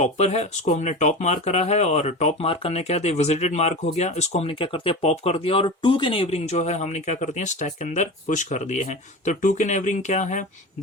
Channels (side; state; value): both; normal; correlation 0.28